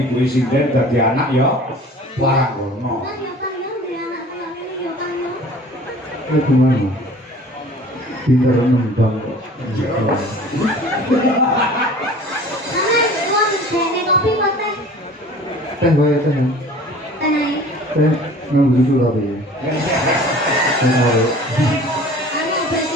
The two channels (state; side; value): normal; both; correlation 0.45